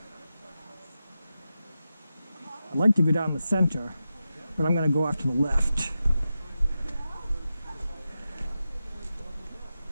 like to go down the center, but I'm going to go off to the left.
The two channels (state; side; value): inverted; both; correlation -0.90